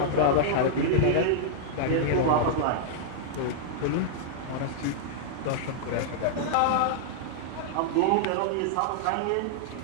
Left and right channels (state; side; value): different; both; correlation -0.01